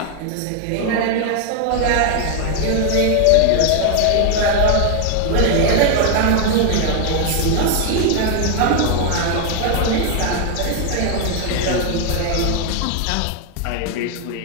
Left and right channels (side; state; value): both; different; correlation 0.01